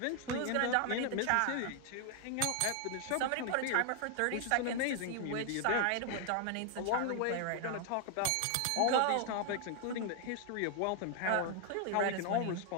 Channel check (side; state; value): both; different; correlation 0.00